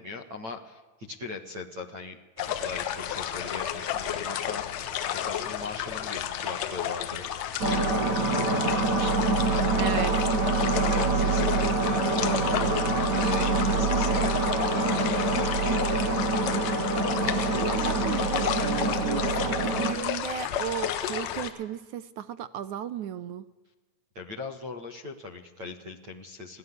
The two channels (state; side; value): late; left; 8.7 ms